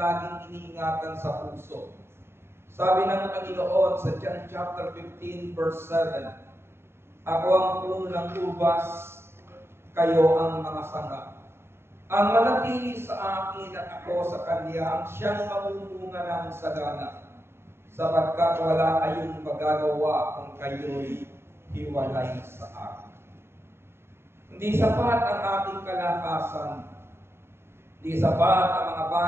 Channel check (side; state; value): left; late; 0.12 ms